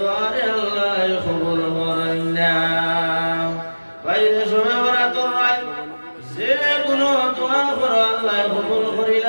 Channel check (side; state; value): both; inverted; correlation -1.00